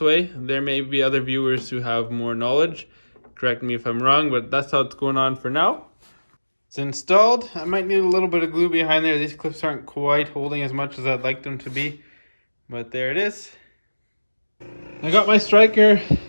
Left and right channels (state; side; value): inverted; both; correlation -1.00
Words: There may be other viewers who have more knowledge. Correct me if I'm wrong, but that's how it's going on for now. It's installed. I might need a little bit of glue behind there. These clips aren't quite holding as much as I'd like them to be, but there it is. I got my striker